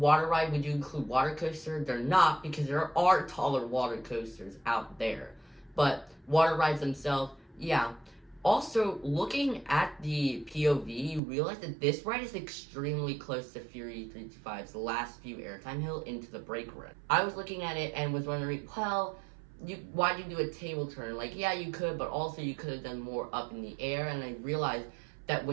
ride, would you include water coaster? They're not, because there are taller water coasters out there. But water rides themselves, yeah. Also, looking at the POV, you realize that this ride is extremely close to Fury 325's last few airtime hill into the brake run. I was looking at it and was wondering, well, why did you do a table turn? Like, yeah, you could, but also you could have done more up in the air. And I realized that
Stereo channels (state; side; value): drops out; left; at 11.2 s